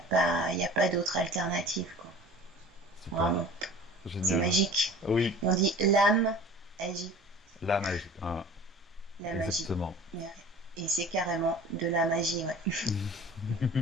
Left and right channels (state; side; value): normal; both; correlation 0.43